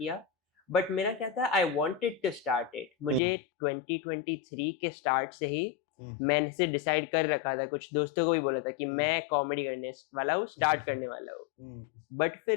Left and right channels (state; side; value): drops out; right; at 3.2 s